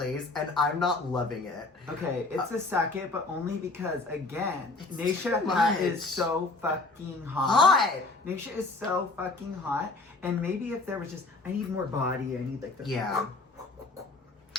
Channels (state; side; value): quieter; right; 3.5 dB